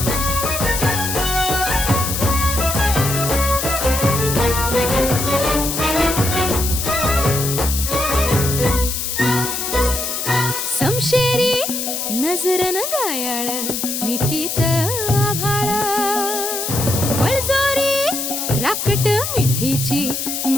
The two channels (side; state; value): left; noise; hiss, 3 dB below the sound